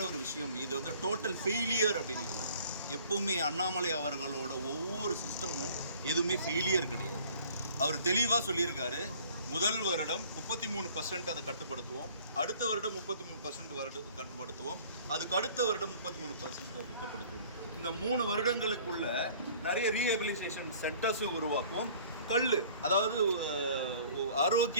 ஒரு விஷயம், இது டோட்டல் ஃபெயிலியர் அப்படின்னு இருக்காங்க. எப்பவுமே அண்ணாமலை அவர்களோட ஒவ்வொரு சிஸ்டமும் எதுவுமே ஃபெயிலியர் கிடையாது. அவர் தெளிவாக சொல்லியிருக்காரு, முதல் வருடம் 33% அதை கட்டுப்படுத்துவோம், அடுத்த வருடம் 33% கட்டுப்படுத்துவோம், அதுக்கு அடுத்த வருடம் 33% கட்டுப்படுத்துவோம். இந்த 3 வருடங்களுக்குள்ள நிறைய ரீஹபிலிட்டேஷன் சென்டர்ஸும் உருவாக்குவோம். அதாவது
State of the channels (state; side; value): inverted; both; correlation -0.52